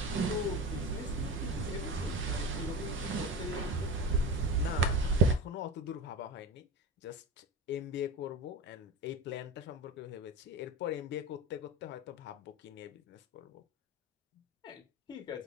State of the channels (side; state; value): both; normal; correlation 0.27